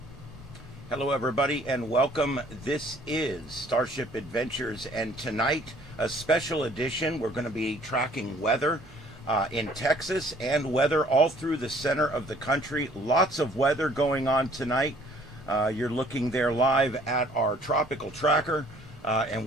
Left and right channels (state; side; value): normal; both; correlation 0.58